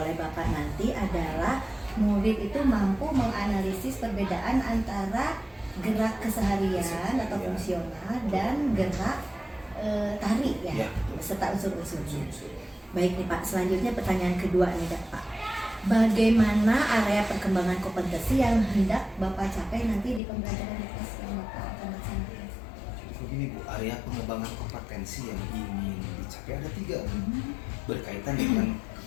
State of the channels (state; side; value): drops out; right; at 20.2 s